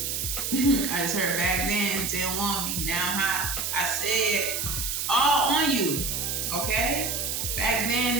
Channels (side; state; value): right; noise; hiss, 1 dB below the sound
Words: I just heard back then, didn't want me, now I'm hot. I said, all on you, okay? Back